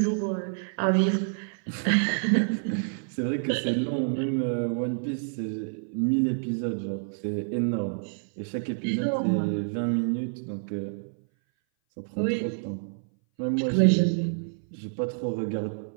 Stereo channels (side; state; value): left; silent; 58 dB below the other